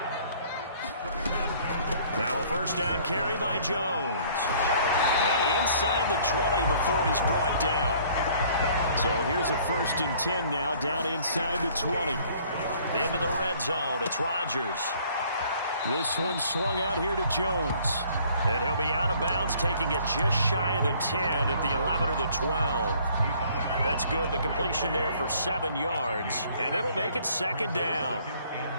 Now a first down carry by Jones. And inside the 20 before he's brought down. So here's a 1st and 10 now, down inside the 20. Into the red zone, it's Rodgers. This one swung out here to Jones. And he'll be out of bounds, taking it just shy of the 10 at the 11 or the 12. That's good, the completion there for 7 yards. And it'll make it 2nd down.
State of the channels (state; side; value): inverted; both; correlation -0.57